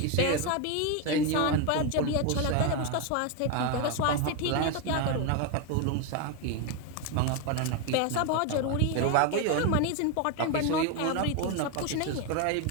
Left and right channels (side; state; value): both; different; correlation 0.02